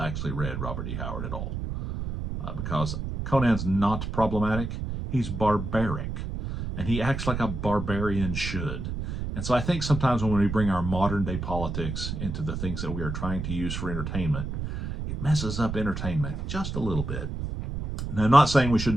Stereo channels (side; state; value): right; noise; rumble, 5 dB below the sound